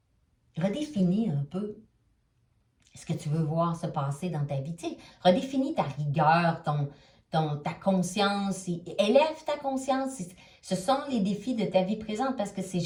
redéfinis un peu ce que tu veux voir se passer dans ta vie. Tu sais, redéfinis ta rigueur, ta conscience, élève ta conscience. Ce sont les défis de ta vie présente parce que c'est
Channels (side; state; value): both; identical; correlation 1.00